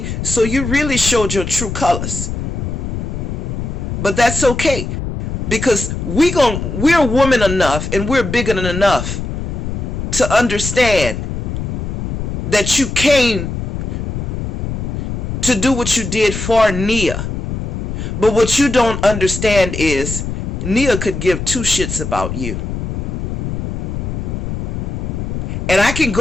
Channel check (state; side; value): noise; left; rumble, 4 dB below the sound